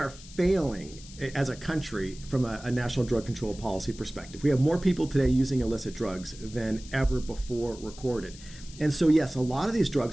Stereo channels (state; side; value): noise; left; hiss, 18 dB below the sound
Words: failing as a country from a national drug control policy perspective. We have more people today using illicit drugs than ever before recorded. And so, yes, a lot of these